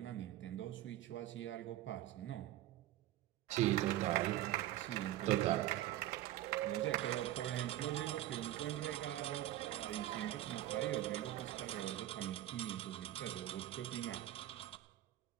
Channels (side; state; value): left; quieter; 14.2 dB